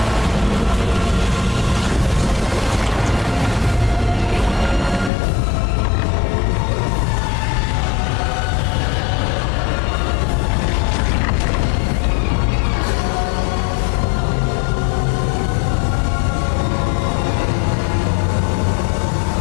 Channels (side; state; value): right; drops out; at 5.1 s